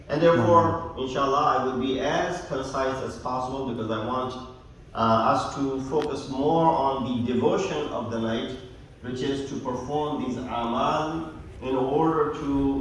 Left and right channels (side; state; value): both; identical; correlation 1.00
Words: And therefore, inshallah, I will be as concise as possible because I want us to focus more on the devotion of the night, which is to perform these amal in order